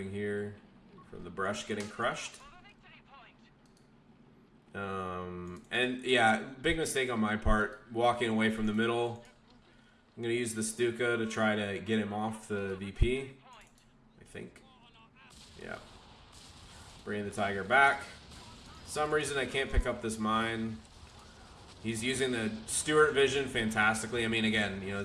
here from the brush getting crushed. And yeah, big mistake on my part, walking away from the middle. I'm going to use the Stuka to try to get him off the VP, I think. Yeah. Bringing the Tiger back. Some reason I can't pick up this mine. He's using the Stuart vision fantastically. I mean, again, you know,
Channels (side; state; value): both; identical; correlation 1.00